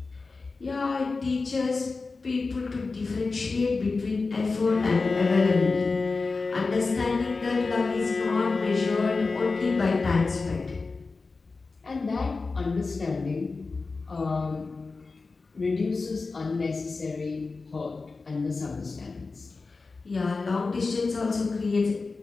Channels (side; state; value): right; quieter; 4.0 dB